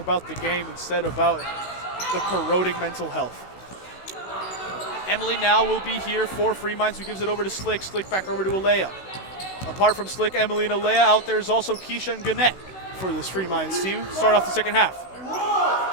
the game instead about the corroding mental health. Emily now will be here for Freeminds, who gives it over to Slick. Slick back over to Alea. Apart from Slick, Emily, and Alea, out there is also Keisha and Gannett for this Freeminds team. Start off the second half.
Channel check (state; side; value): late; right; 16 ms